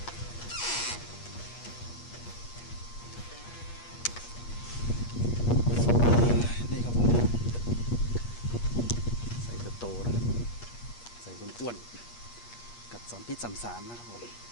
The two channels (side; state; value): right; late; 8.4 ms